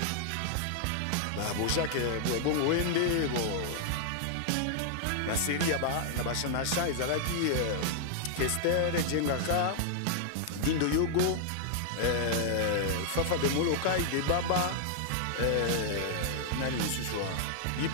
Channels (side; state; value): both; different; correlation -0.01